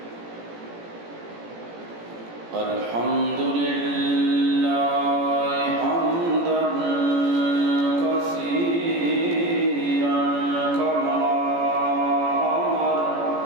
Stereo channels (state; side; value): late; left; 17 ms